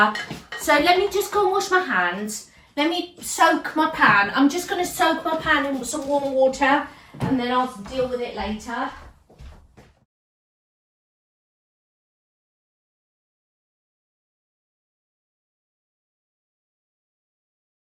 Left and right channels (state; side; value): identical; both; correlation 1.00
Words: so let me just go and wash my hands. Let me soak my pan. I'm just going to soak my pan in some warm water, and then I'll deal with it later.